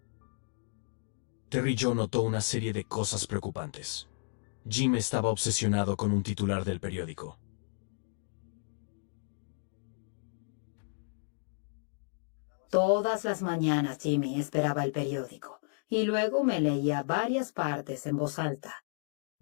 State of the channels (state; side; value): silent; right; digital silence